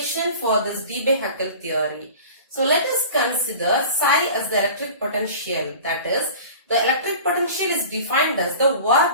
for this Debye Huckel theory. So let us consider psi as the electric potential. That is, the electric potential is defined as the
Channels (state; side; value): inverted; both; correlation -0.40